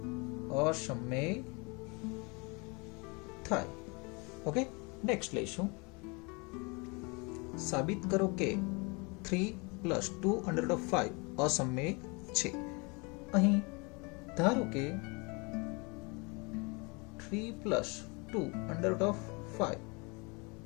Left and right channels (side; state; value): right; quieter; 29.7 dB